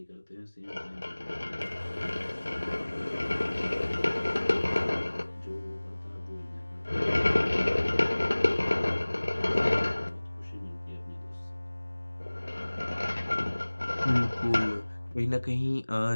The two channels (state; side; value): inverted; both; correlation -1.00